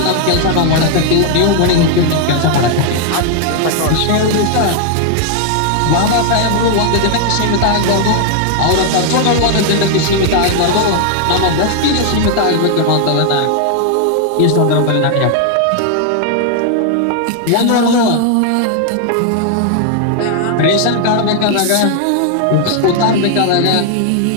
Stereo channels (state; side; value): different; both; correlation 0.00